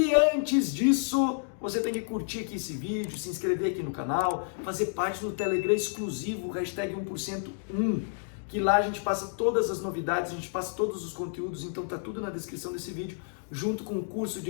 antes disso, você tem que curtir aqui esse vídeo, se inscrever aqui no canal, fazer parte do Telegram exclusivo, hashtag 1%1, que lá a gente passa todas as novidades, a gente passa todos os conteúdos, então tá tudo na descrição desse vídeo, junto com o curso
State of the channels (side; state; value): right; silent; digital silence